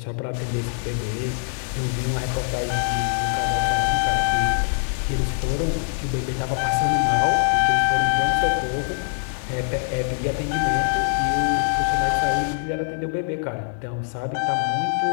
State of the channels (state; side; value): silent; right; digital silence